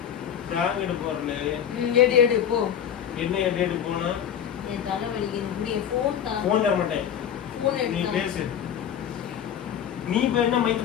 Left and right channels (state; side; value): quieter; right; 9.1 dB